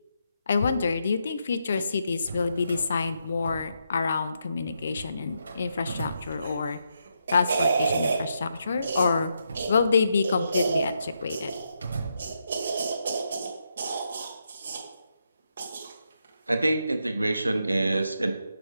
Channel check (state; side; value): inverted; both; correlation -0.81